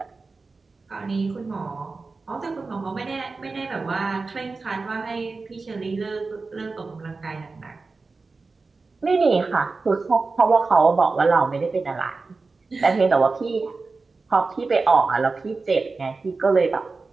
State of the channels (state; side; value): quieter; left; 4.0 dB